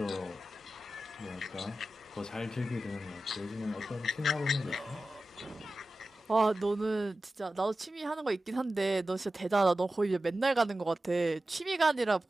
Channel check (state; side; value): normal; both; correlation 0.94